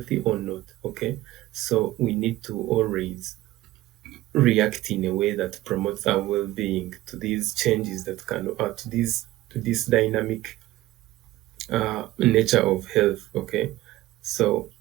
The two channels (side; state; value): left; quieter; 16.5 dB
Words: or not. Okay. So we need to always react in a way that promotes our well-being to these changes that can to this dynamic nature of health. Okay. So